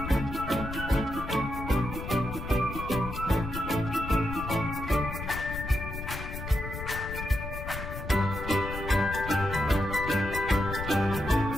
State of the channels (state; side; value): noise; left; rumble, 7 dB below the sound